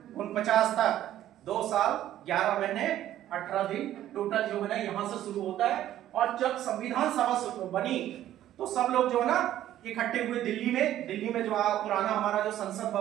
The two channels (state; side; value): quieter; left; 12.6 dB